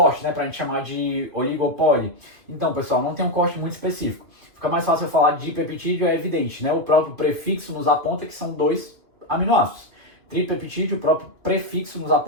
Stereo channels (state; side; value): late; left; 2.5 ms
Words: né, para a gente chamar de oligopoli? Então, pessoal, não tem um corte muito específico. Fica mais fácil eu falar de peptídeo, é evidente, né? O próprio prefixo nos aponta que são 2 aminoácidos. Tripeptídeo, o próprio prefixo nos